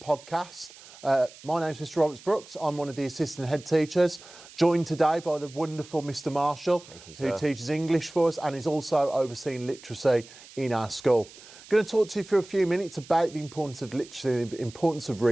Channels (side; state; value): right; noise; hiss, 20 dB below the sound